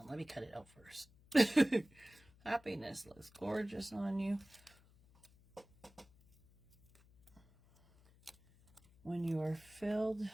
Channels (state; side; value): noise; left; hum, 27 dB below the sound